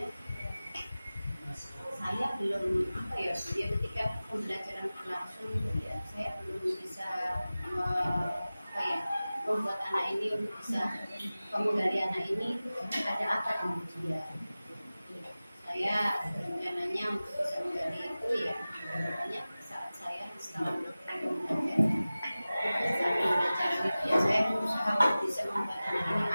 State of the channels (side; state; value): both; inverted; correlation -0.97